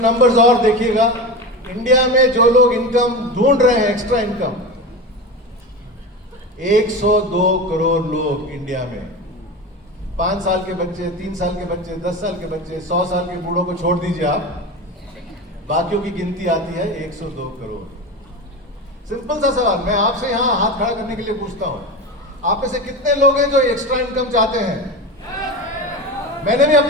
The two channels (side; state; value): both; normal; correlation 0.25